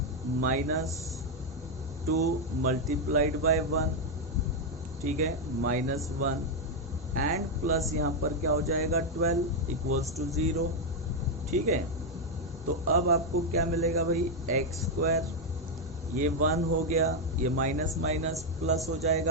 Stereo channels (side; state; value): both; normal; correlation 0.02